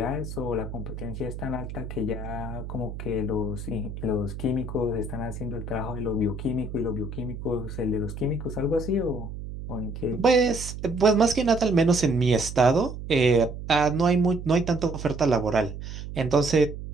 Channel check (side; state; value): right; noise; hum, 9 dB below the sound